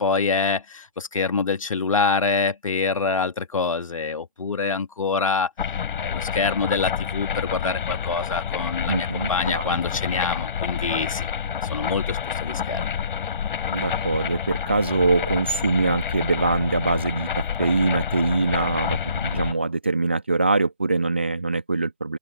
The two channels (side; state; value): both; inverted; correlation -0.47